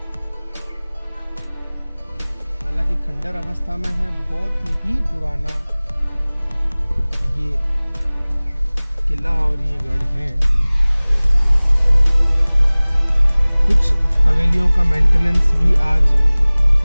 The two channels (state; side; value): inverted; both; correlation -1.00